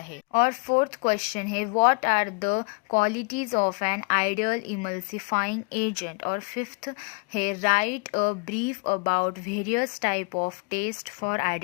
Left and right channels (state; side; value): quieter; right; 31.6 dB